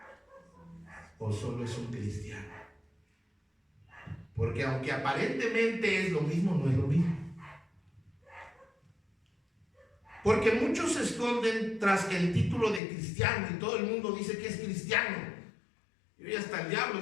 o solo es un cristiano? Porque aunque aparentemente es lo mismo, no es lo mismo. Porque muchos se esconden tras el título de cristiano y todo el mundo dice que es cristiano. Y hasta el diablo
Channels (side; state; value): right; drops out; at 12.8 s